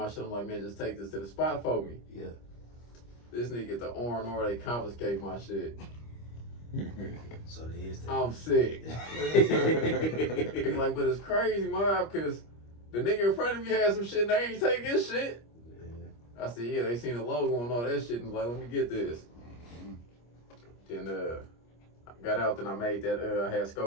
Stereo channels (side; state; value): right; late; 25 ms